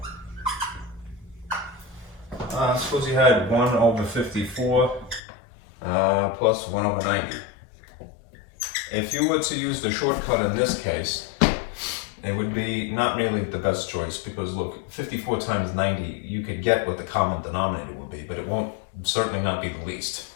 Suppose you had 1 over 54 plus 1 over 90. If you were to use the shortcut in this case, it would be not really the best choice because look, 54 times 90, you could get what the common denominator would be, but it won't certainly not be the least.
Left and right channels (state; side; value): drops out; right; at 5.2 s